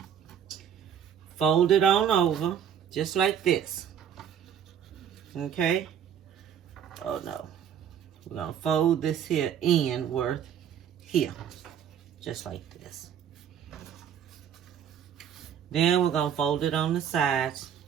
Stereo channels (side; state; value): left; quieter; 8.7 dB